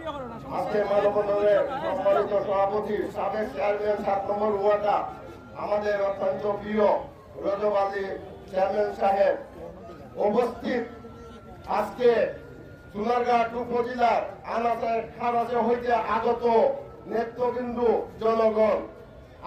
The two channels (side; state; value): both; identical; correlation 1.00